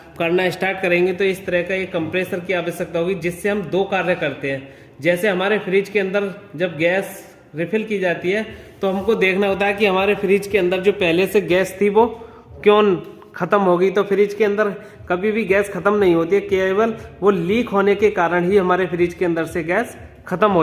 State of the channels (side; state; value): both; identical; correlation 1.00